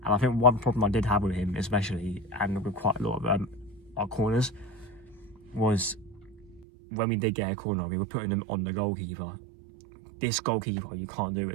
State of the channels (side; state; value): left; drops out; at 6.7 s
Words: And I think one problem I did have with him, especially, and with quite a lot of our corners, was when we did get a corner, we were putting them on the goalkeeper. This goalkeeper, you can't do